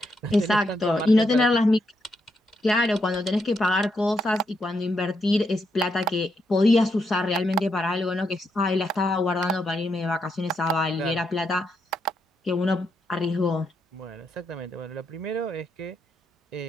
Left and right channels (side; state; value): both; normal; correlation 0.80